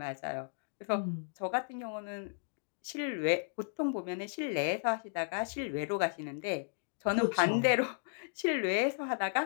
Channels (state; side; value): silent; right; digital silence